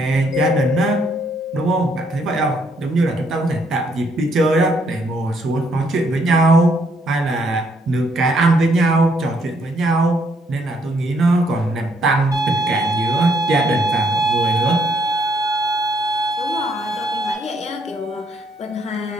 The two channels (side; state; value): both; normal; correlation 0.70